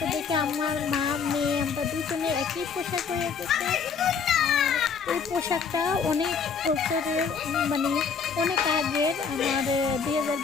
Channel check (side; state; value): right; quieter; 6.0 dB